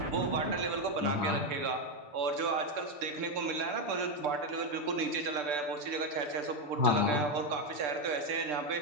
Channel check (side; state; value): left; late; 6.8 ms